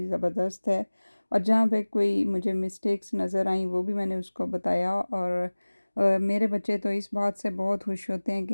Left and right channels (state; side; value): inverted; both; correlation -1.00